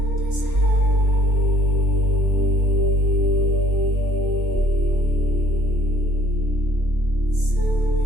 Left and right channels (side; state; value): left; late; 2.0 ms